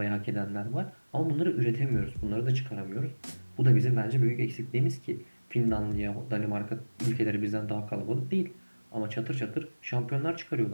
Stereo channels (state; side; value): inverted; both; correlation -1.00